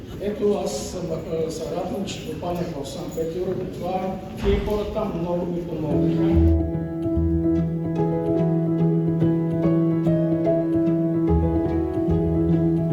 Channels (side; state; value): both; identical; correlation 1.00